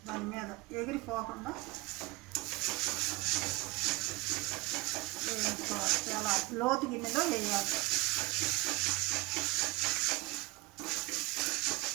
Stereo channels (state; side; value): quieter; left; 23.8 dB